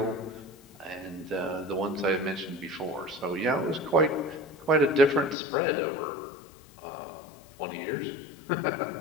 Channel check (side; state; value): right; drops out; at 5.4 s